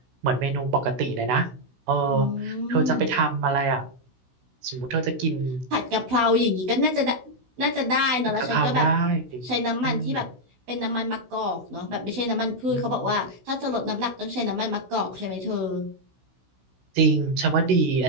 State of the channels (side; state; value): left; late; 16 ms